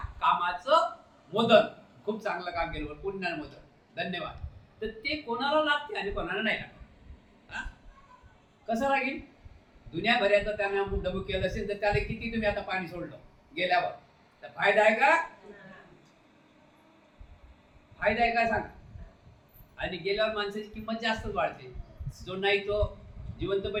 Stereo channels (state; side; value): identical; both; correlation 1.00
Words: कामाचं मोदन, खूप चांगलं काम केलं पुण्यानं मोदन, धन्यवाद, तर ते कोणाला लागते आणि कोणाला नाही लागत। कसं लागेल? दुनियाभराचं त्याने अमुक डबूक केलं असेल तर त्याला किती तुम्ही आता पाणी सोडलं गेल्यावर, तर फायदा आहे का? फायदा आहे का सांगा? आणि गेल्यावर माणसाची किंमत जास्तच वाढते। जो नाही तो